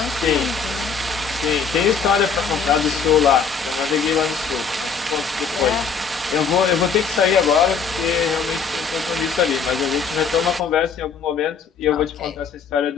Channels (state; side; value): quieter; right; 5.8 dB